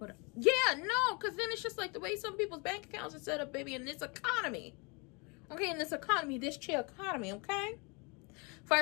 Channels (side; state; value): right; quieter; 30.4 dB